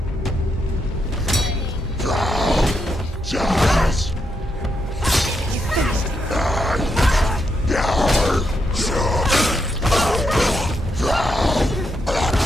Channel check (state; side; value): normal; both; correlation 0.80